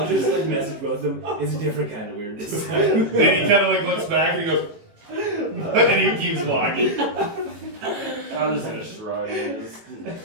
just like message both of them. It's a different kind of weird this time. Then he kind of like looks back and he goes, and he keeps walking. I'm just gonna shrug. And just...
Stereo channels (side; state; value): left; late; 18 ms